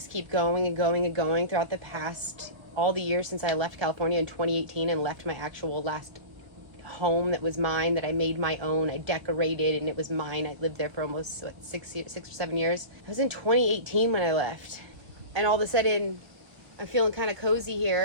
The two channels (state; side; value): late; left; 1.3 ms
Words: keep going and going and going throughout the past, all the years since I left California in 2018 and left my actual last home that was mine, that I made my own. I decorated, and it was mine. I lived there for almost, what, 6 or 7 years. I was in 2018 when I left. And all of a sudden, I'm feeling kind of cozy